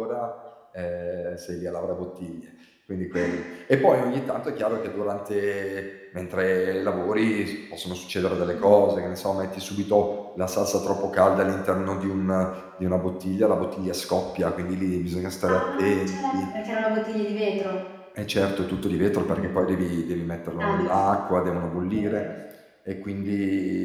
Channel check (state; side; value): identical; both; correlation 1.00